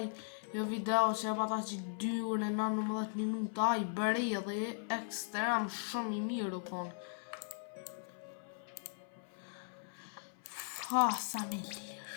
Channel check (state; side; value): silent; right; 52 dB below the other